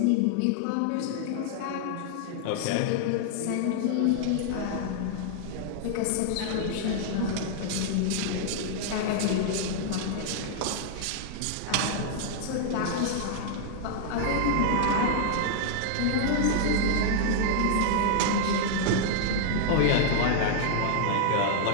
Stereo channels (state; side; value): different; both; correlation -0.01